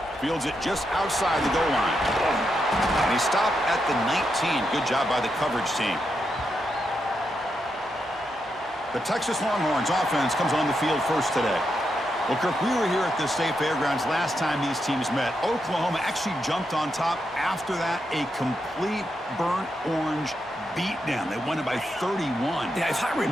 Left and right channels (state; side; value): normal; both; correlation 0.84